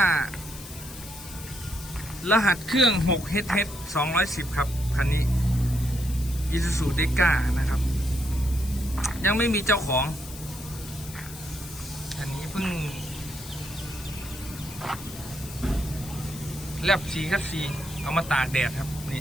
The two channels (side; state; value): left; noise; hiss, 14 dB below the sound